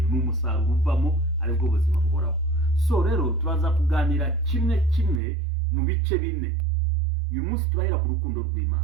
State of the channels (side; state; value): left; drops out; at 5.2 s